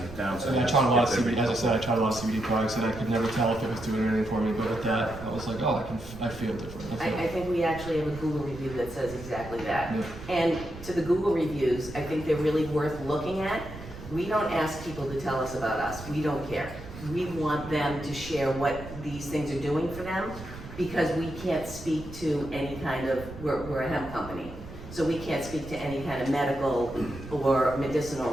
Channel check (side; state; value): right; noise; rumble, 14 dB below the sound